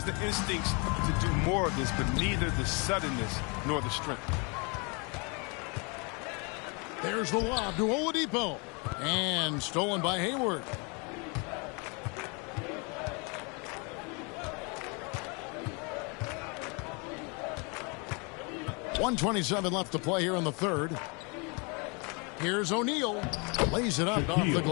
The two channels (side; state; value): right; quieter; 32.0 dB